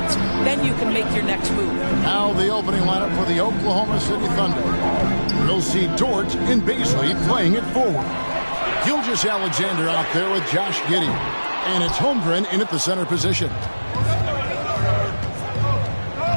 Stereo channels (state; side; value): inverted; both; correlation -1.00